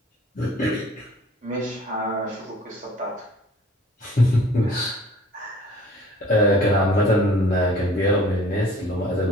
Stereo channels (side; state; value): both; normal; correlation 0.51